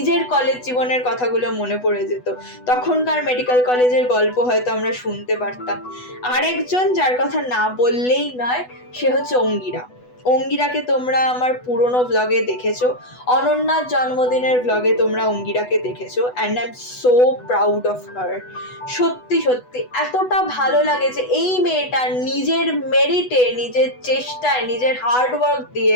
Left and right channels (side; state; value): right; late; 8.1 ms